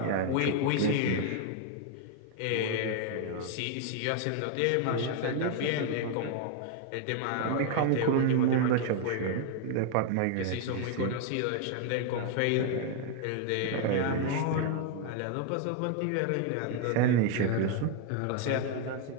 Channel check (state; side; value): different; both; correlation 0.00